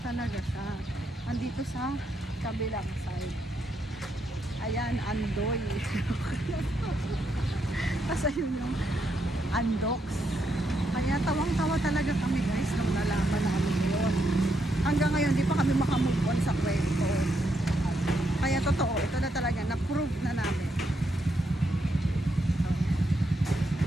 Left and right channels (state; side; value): normal; both; correlation 0.79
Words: talaga siya. Andito sa kabilang side. Ayan, Andoy. Kasi yun yung Andox. Kaya tawang-tawa talaga kami guys nung nalaman namin yun. Hanggang ngayon, di pa kami makamove on sa kwento. Kaya totoo, ito na talaga, na-prove na namin.